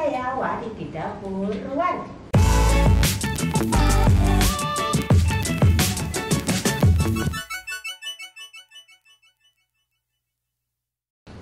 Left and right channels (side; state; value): both; identical; correlation 1.00